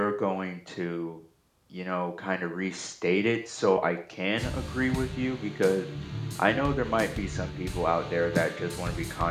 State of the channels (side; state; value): both; identical; correlation 1.00